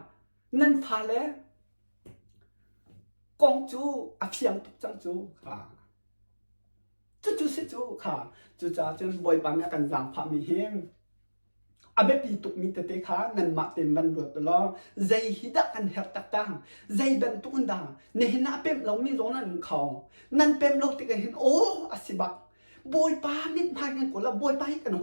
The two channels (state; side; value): inverted; both; correlation -1.00